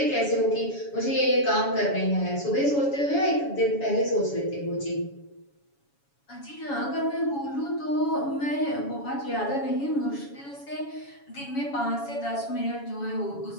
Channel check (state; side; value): late; right; 7.1 ms